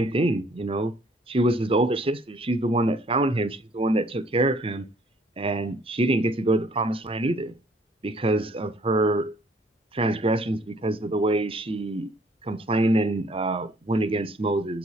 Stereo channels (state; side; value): normal; both; correlation 0.61